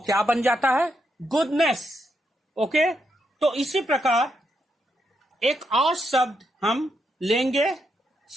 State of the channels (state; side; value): normal; both; correlation 0.81